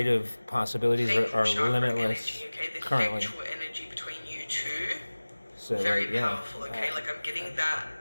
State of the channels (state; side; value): inverted; both; correlation -1.00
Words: possibilities the are chakra limitless energy, okay? The currently. sexual energy between you two, So very like, yeah, powerful, okay? Like, I'm getting that.